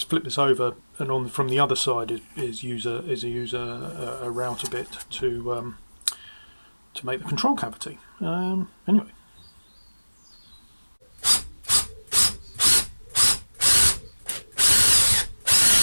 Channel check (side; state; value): both; inverted; correlation -1.00